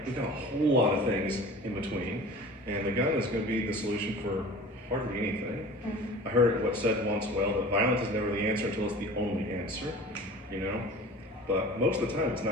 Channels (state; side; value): normal; both; correlation 0.40